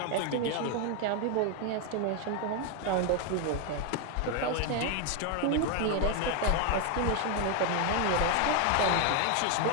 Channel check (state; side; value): different; both; correlation 0.01